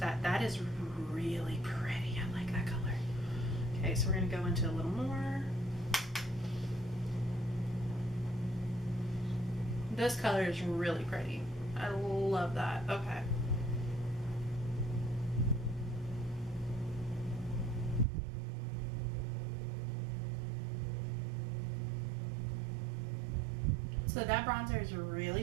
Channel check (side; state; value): left; drops out; at 18.1 s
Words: That is really pretty. I like that color. Okay, so we're gonna go into a little more. This color is really pretty. I love that. Okay. So that bronzer is really